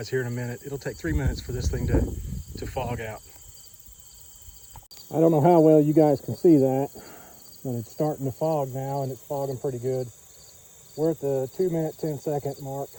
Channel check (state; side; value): identical; both; correlation 1.00